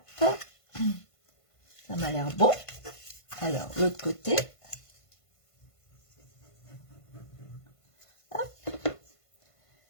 Ça m'a l'air bon. Alors, l'autre côté. Hop.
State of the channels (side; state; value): right; late; 1.5 ms